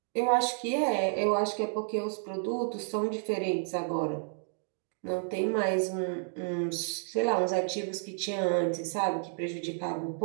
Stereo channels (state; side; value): silent; left; digital silence